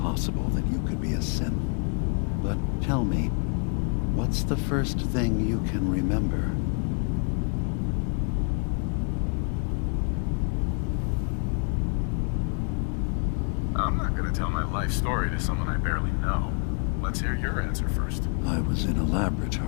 that you could be a synth, but tell me, what's the first thing you can remember? I'm not gonna tell my life story to someone I barely know. Let's hear your answer first. I was in a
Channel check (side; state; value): right; quieter; 39.1 dB